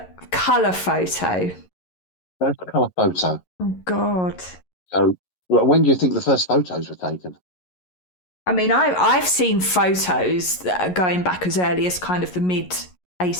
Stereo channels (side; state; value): right; late; 11 ms